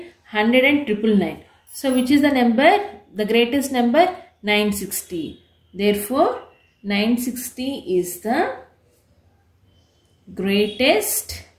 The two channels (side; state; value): both; identical; correlation 1.00